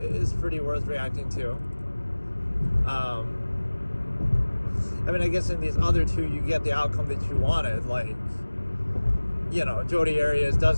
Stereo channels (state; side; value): inverted; both; correlation -1.00